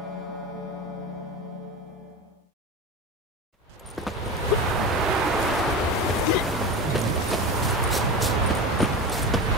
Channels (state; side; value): normal; both; correlation 0.26